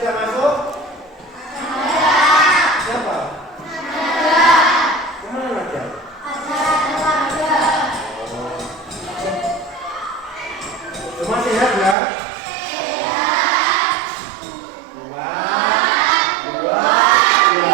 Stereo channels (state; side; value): drops out; left; at 12.0 s